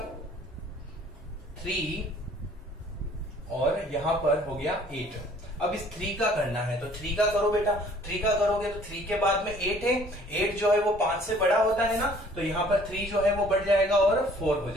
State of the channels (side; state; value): both; normal; correlation 0.56